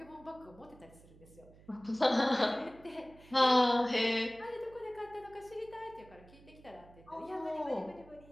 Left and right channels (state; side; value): noise; right; hum, 23 dB below the sound